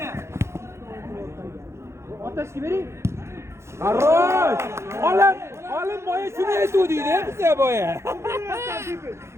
Otashga bering. Qarrosh! Olim boya shuni aytuvdik-da bizga boya.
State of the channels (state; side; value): late; left; 0.13 ms